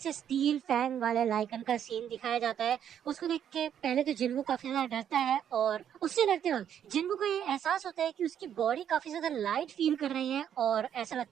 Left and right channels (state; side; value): quieter; left; 9.3 dB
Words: स्टील फैंग वाले लाइकन का सीन दिखाया जाता है। उसको देख के पहले तो जिन्वो काफी ज्यादा डरता है और उससे डरते वक्त जिन्वो को ये एहसास होता है कि उसकी बॉडी काफी ज्यादा लाइट फील कर रही है और ऐसा